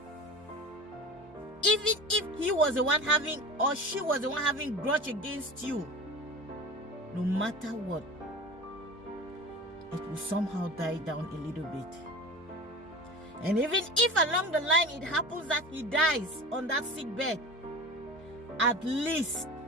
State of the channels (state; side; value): normal; both; correlation 0.34